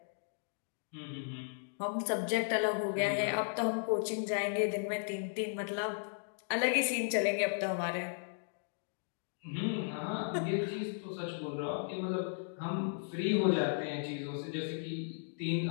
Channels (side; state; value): right; silent; digital silence